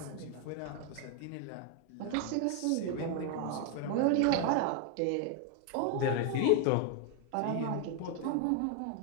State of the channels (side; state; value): both; different; correlation 0.01